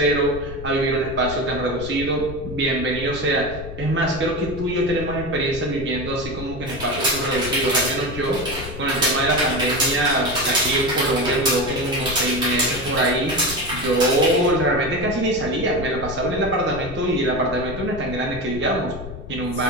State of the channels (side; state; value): left; noise; rumble, 11 dB below the sound